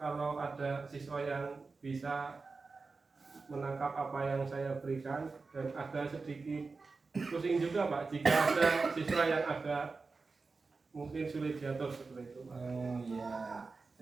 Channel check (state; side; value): quieter; left; 4.2 dB